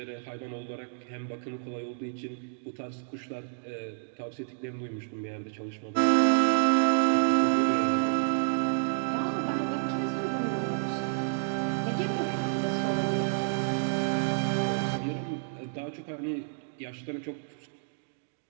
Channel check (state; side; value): silent; left; digital silence